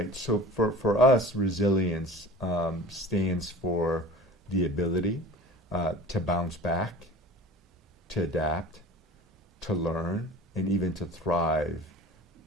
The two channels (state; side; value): normal; both; correlation 0.40